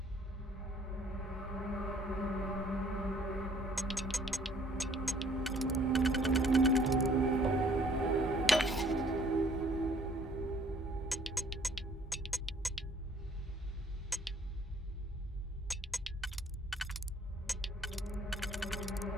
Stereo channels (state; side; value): normal; both; correlation 0.59